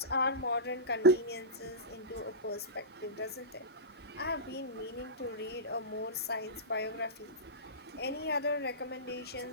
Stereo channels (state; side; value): normal; both; correlation -0.18